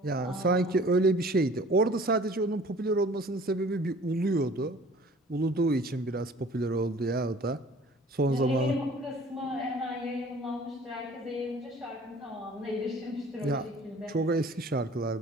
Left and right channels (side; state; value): both; normal; correlation 0.49